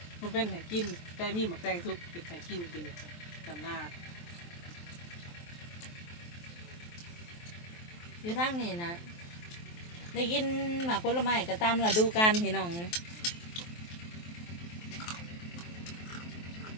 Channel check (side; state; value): right; late; 23 ms